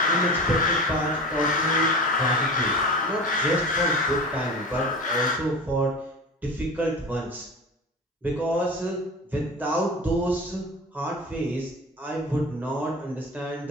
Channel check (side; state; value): both; normal; correlation 0.33